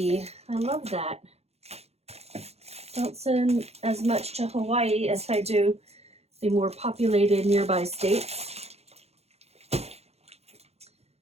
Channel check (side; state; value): left; late; 0.30 ms